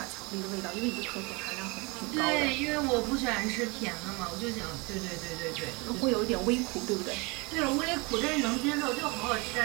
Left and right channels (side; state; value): left; quieter; 27.8 dB